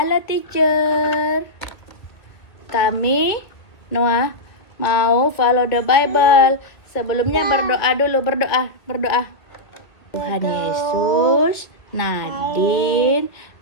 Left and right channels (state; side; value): late; right; 2.0 ms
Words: teacher. Kami Noah mau follow the Bible. Sebelumnya berdoa dulu, berdoa. Tuhan Yesus, Nadine,